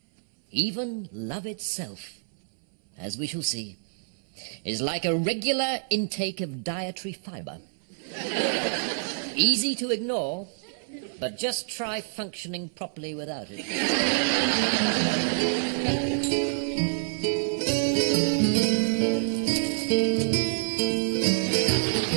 Even love itself, as we shall see, is like a regular intake of dietary fibre. Easy to ignore, but just try functioning properly without it.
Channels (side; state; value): left; silent; 60 dB below the other